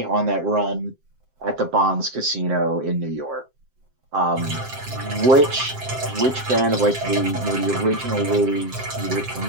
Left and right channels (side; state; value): left; late; 7.6 ms